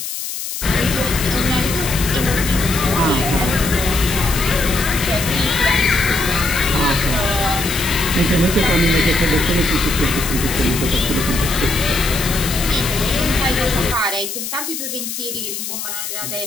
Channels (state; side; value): noise; left; hiss, 6 dB below the sound